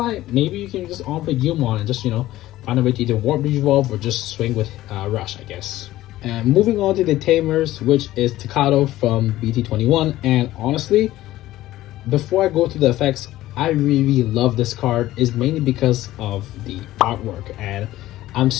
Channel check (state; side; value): quieter; right; 15.4 dB